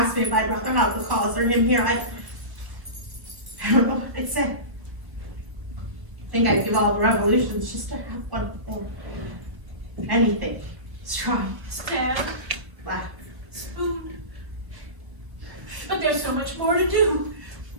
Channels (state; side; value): late; left; 1.3 ms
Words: me if I'd rather have the cause or him here, I don't know what I'd say. I think I'd give all the revolutions just to have one more. Anything. Strong. Stab, Laugh. spoon. But there's so much more to do.